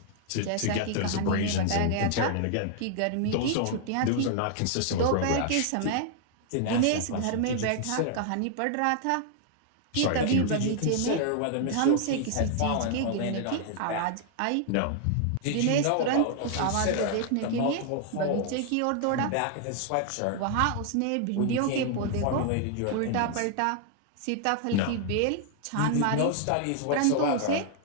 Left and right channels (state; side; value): different; both; correlation 0.00